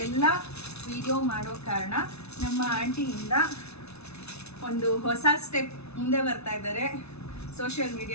ಎಲ್ಲ ವಿಡಿಯೋ ಮಾಡೋ ಕಾರಣ ನಮ್ಮ ಆಂಟಿಯಿಂದ ಒಂದು ಹೊಸ ಸ್ಟೆಪ್ ಮುಂದೆ ಬರ್ತಾ ಇದ್ದಾರೆ ಸೋಷಿಯಲ್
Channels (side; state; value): right; late; 0.80 ms